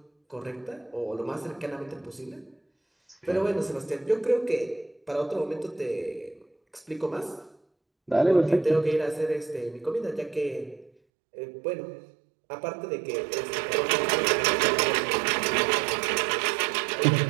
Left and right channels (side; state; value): left; drops out; at 10.9 s